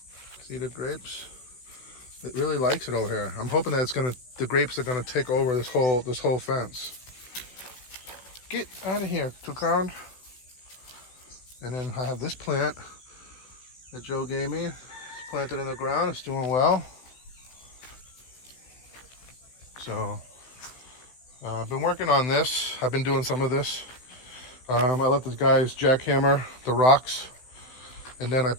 See the grapes? It really likes it over here. I'm hoping that the grapes are gonna take over this whole fence. Get out of here, Toucan. And then I have this plant that Joe gave me. It's planted in the ground. It's doing well. So I've been working on this. I've been doing some of this. I let the guys jackhammer the rocks, and then I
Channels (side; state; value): right; late; 16 ms